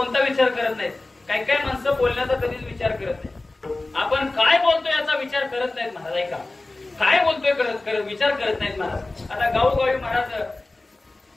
विचार करत नाही, काही काही माणसं बोलण्याचा कधीच विचार करत नाही. आपण काय बोलतोय याचा विचार करत नाहीत महाराज. ऐका, काय बोलतोय करत विचार करत नाहीत महाराज. आता गावोगावी महाराज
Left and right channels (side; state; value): right; quieter; 3.0 dB